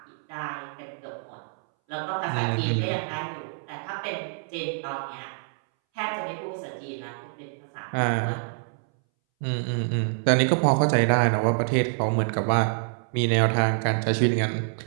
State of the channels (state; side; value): silent; left; 61 dB below the other